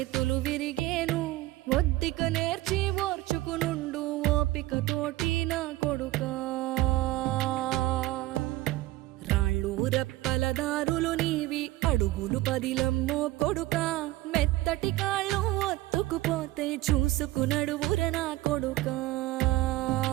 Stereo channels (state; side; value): quieter; left; 17.5 dB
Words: విరిగేను. ఒద్దిక నేర్చి ఓర్చుకునుండు ఓపిక తోటి నా కొడుకా. రాళ్ళు రెప్పల దారులు నీవి, అడుగులు పదిలమ్మో కొడుకా. మెత్తటి కాళ్ళు ఒత్తుకుపోతే చూసుకునడువుర నా కొడుకా.